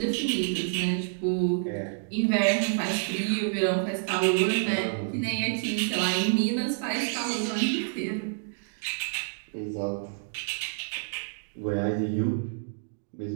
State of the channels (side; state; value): left; silent; digital silence